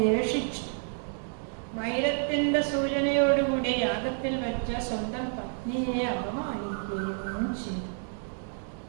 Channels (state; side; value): silent; left; 56 dB below the other